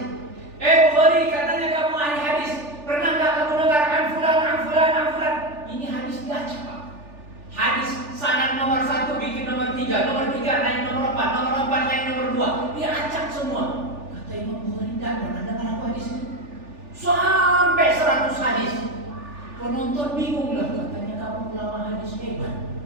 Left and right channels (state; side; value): late; left; 3.4 ms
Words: Bukhari katanya kamu ahli hadis. Pernah nggak kamu dengar an fulan? Ini hadis diacak Pak. Hadis sanad nomor 1 bikin nomor 3 naik nomor 4, nomor 4 naik nomor 2. Dia acak semua. Kata Imam Bukhari enggak pernah dengar aku hadis itu. Sampai 100 hadis. Penonton bingung lah, katanya kamu ulama hadis hebat.